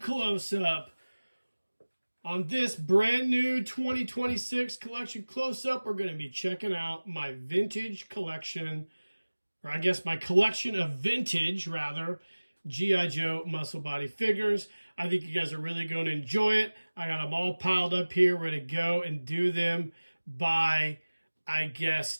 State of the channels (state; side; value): inverted; both; correlation -1.00